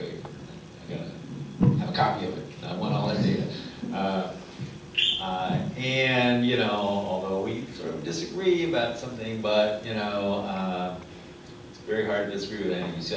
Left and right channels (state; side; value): identical; both; correlation 1.00